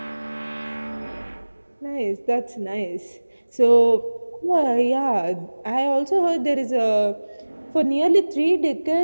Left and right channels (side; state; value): both; inverted; correlation -1.00